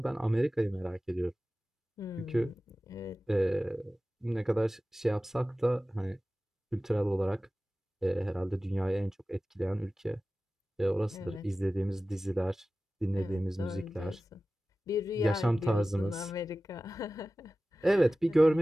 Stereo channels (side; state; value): both; normal; correlation 0.96